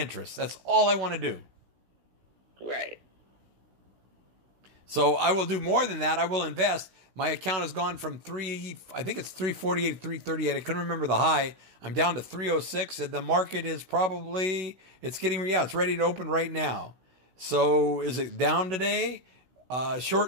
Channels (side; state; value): left; late; 16 ms